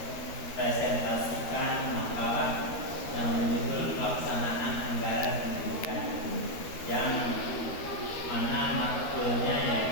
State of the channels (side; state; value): right; late; 13 ms